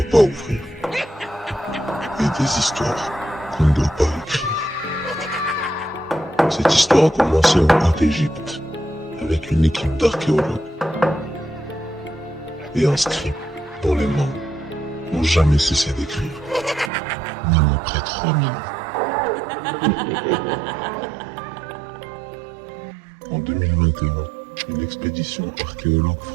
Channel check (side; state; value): left; drops out; at 16.9 s